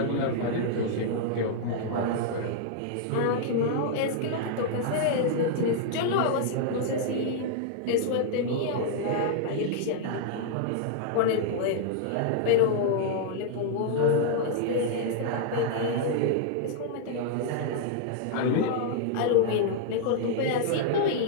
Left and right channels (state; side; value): different; both; correlation -0.01